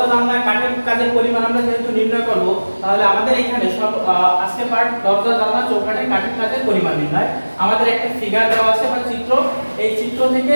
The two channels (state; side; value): inverted; both; correlation -1.00